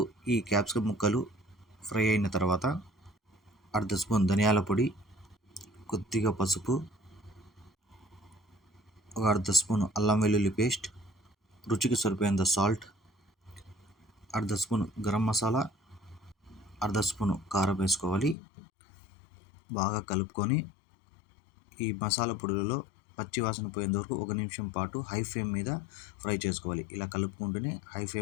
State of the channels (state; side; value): drops out; right; at 18.4 s